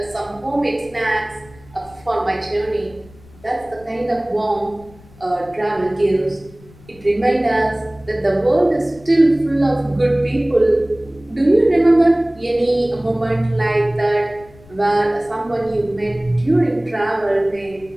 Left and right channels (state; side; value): noise; left; rumble, 24 dB below the sound